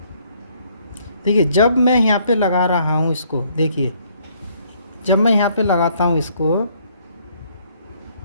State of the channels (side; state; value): both; inverted; correlation -0.66